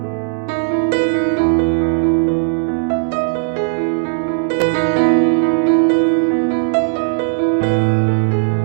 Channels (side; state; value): left; silent; 64 dB below the other